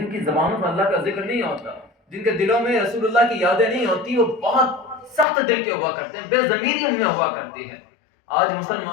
کی زبانوں پر اللہ کا ذکر نہیں ہوتا، جن کے دلوں میں رسول اللہ کی یادیں نہیں ہوتی، وہ بہت سخت دل کے ہوا کرتے ہیں، بے ضمیری ان میں ہوا کرتی ہے۔ آج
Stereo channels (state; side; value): drops out; right; at 5.2 s